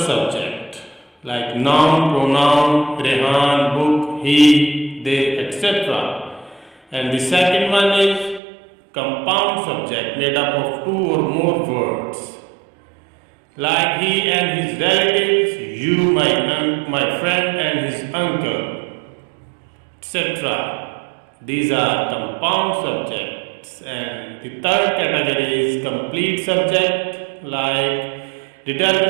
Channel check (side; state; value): left; drops out; at 8.4 s